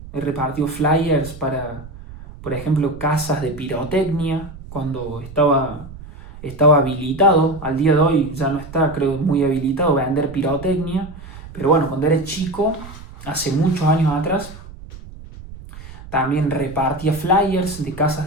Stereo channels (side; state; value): right; noise; rumble, 16 dB below the sound